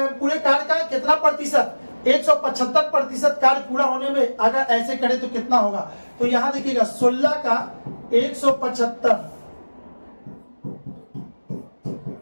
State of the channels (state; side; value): inverted; both; correlation -1.00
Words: कार्य का कितना प्रतिशत, 175% कार्य पूरा होने में अगर ऐसे करे तो कितना होगा, तो यहां देखिएगा 16 का 175